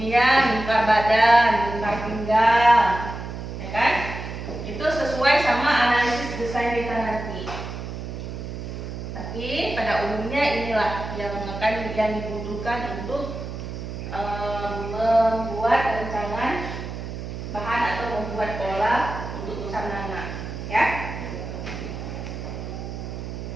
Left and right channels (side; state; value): right; noise; hum, 8 dB below the sound